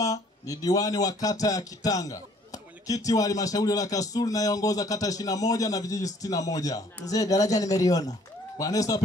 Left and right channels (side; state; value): both; normal; correlation 0.59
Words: ni diwani wa kata ya Kitanga, mwenyekiti wa halmashauri ya Kasulu nayeongoza kata 21 na vijiji 61. Mzee daraja nimeliona. Bwana Yesu